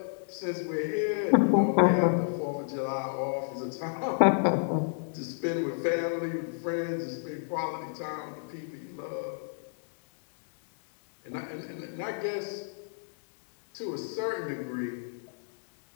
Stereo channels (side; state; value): right; silent; digital silence